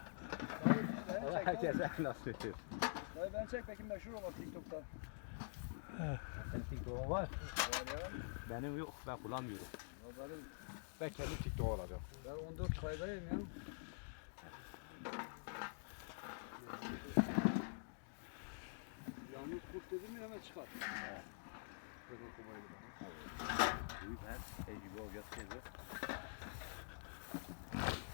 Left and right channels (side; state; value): right; silent; digital silence